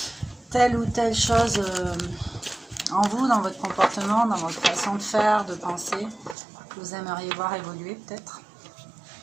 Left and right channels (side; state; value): left; drops out; at 6.4 s